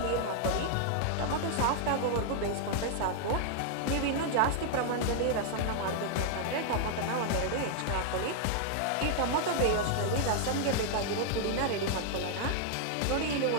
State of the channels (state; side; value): different; both; correlation 0.00